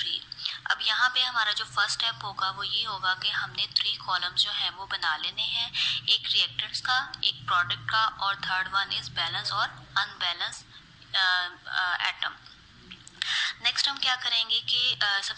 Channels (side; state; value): both; identical; correlation 1.00